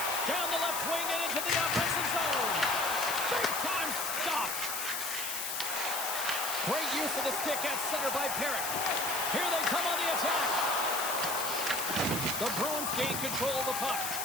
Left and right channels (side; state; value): left; noise; hiss, 3 dB below the sound